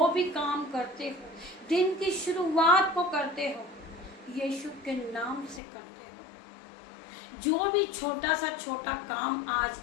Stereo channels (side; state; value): right; drops out; at 5.6 s